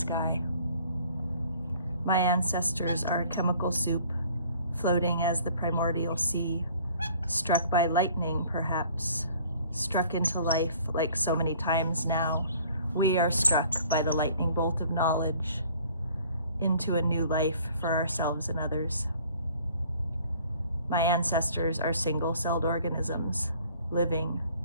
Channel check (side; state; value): both; inverted; correlation -0.54